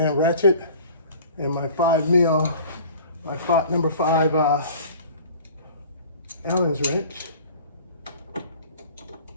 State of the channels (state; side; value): inverted; both; correlation -0.45